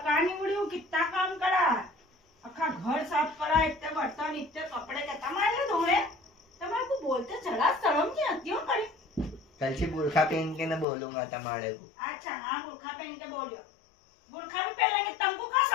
कहाँ निवड़ी हूँ, कितना काम करा, अखा घर साफ करा, इतने बर्तन इतने कपड़े के तुम्हारे धोने। तुम्हारे को बोलते चला शर्म नहीं आती हो करी? कल से बुरखा पहन के न बोलूंगा तुम्हारे को। अच्छा हाँ, बुरखा पहन के बोलियो। बुरखा भी पहन लेंगे, तुमको क्या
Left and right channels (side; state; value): right; drops out; at 10.9 s